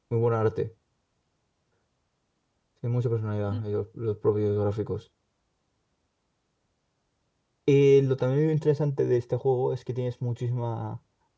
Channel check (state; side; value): identical; both; correlation 1.00